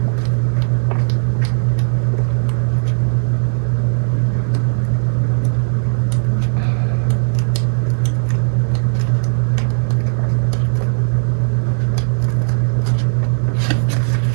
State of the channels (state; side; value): silent; left; 68 dB below the other